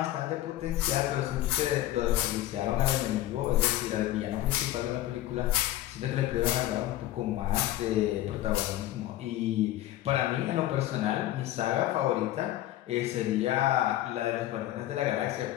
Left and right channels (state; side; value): quieter; right; 14.5 dB